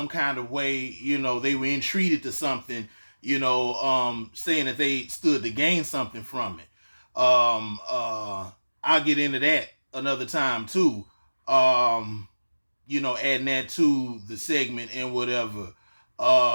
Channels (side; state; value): both; inverted; correlation -1.00